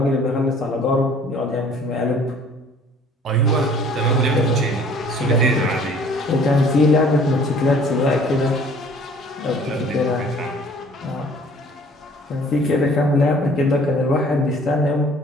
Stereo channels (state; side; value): normal; both; correlation 0.53